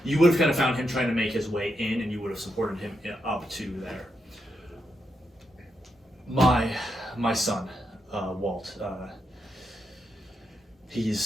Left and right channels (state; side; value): normal; both; correlation 0.83